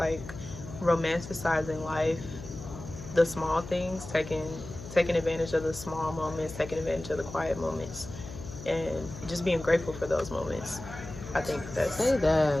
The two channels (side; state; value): left; noise; hum, 12 dB below the sound